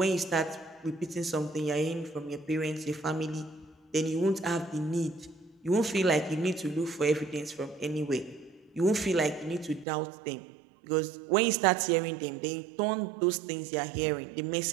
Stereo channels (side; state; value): left; drops out; at 9.9 s